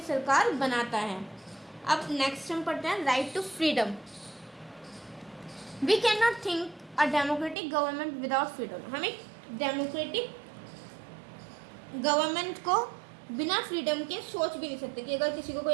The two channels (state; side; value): drops out; left; at 7.6 s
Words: सरकार बनाता है। अब नेक्स्ट हम पढ़ते हैं, right to freedom. We can not think a democratic government without freedom. हम एक डेमोक्रेटिक गवर्नमेंट को बिना फ्रीडम के सोच भी नहीं सकते कि अगर किसी को